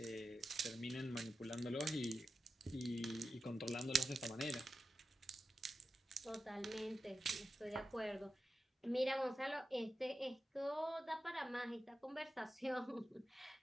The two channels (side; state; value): both; normal; correlation 0.91